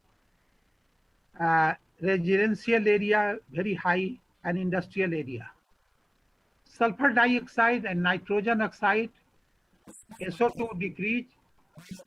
Residential area very high, and industrial area. Sulfur dioxide and nitrogen oxide. Excuse me, Prof.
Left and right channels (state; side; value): identical; both; correlation 1.00